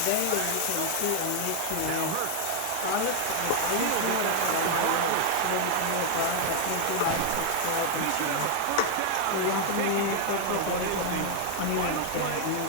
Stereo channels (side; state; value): both; different; correlation 0.00